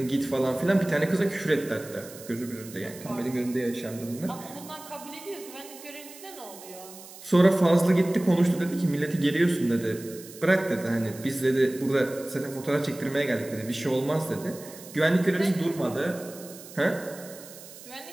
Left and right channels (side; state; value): right; noise; hiss, 17 dB below the sound